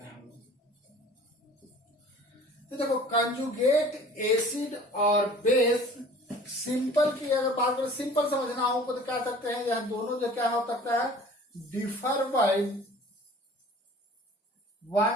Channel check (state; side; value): normal; both; correlation 0.47